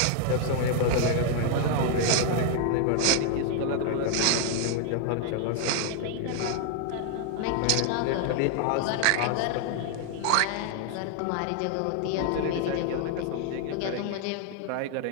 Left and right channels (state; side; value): different; both; correlation 0.00